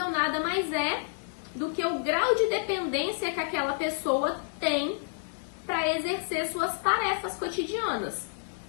nada mais é do que o grau de dependência que aquela pessoa tem para exercer suas tarefas cotidianas.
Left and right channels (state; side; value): silent; right; digital silence